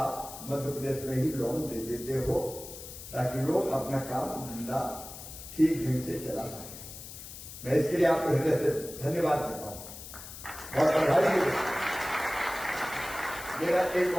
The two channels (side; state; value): left; noise; hiss, 13 dB below the sound